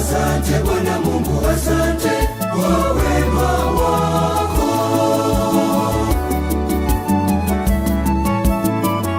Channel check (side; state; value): both; identical; correlation 1.00